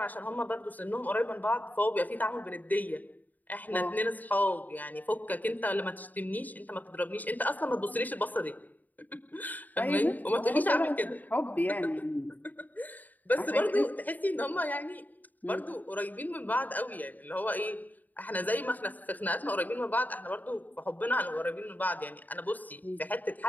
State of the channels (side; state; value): right; late; 0.083 ms